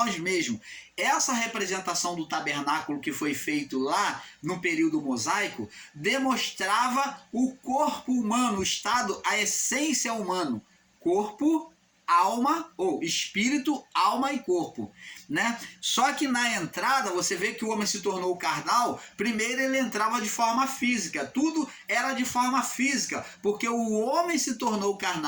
mesmos. Essa representação do tabernáculo que foi feito lá no período mosaico demonstrava o corpo humano, o estado, a essência humana, corpo, alma, ou espírito, alma e corpo, né? Só que na entrada, você vê que o homem se tornou carnal, primeiro ele entrava de forma física, tudo era de forma física, porque o homem se tornou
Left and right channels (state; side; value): identical; both; correlation 1.00